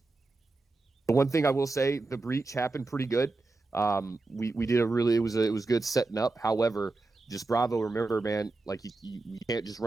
one thing I will say, the breach happened pretty good. We did it was good setting up. However, just Bravo, remember, man, like you can't just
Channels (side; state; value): left; quieter; 3.4 dB